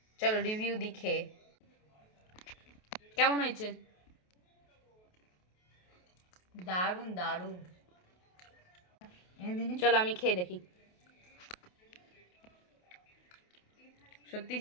চলো রিভিউ দেখে কেমন হয়েছে। দারুণ দারুণ। চলো আমি খেয়ে দেখি। সত্যি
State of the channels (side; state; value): right; late; 28 ms